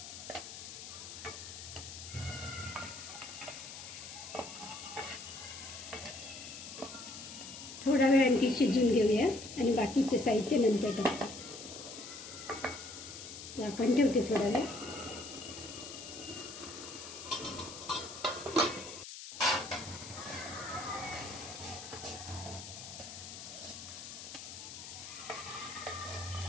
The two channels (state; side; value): noise; left; hiss, 11 dB below the sound